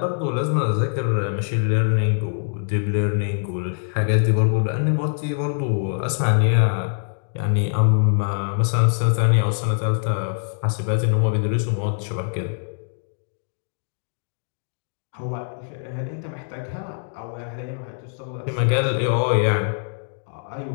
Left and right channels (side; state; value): right; silent; digital silence